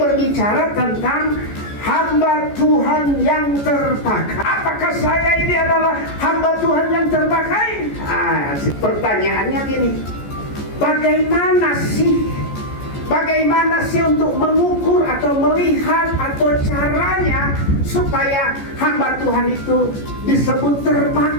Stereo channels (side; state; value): right; late; 14 ms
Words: tentang hamba Tuhan yang terpakai. Apakah saya ini adalah hamba Tuhan yang terpakai? Pertanyaannya gini, bagaimana sih untuk mengukur atau melihat atau caranya supaya hamba Tuhan itu disebut